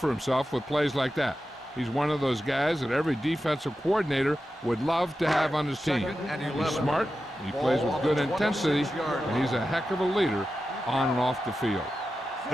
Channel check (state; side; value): normal; both; correlation 0.92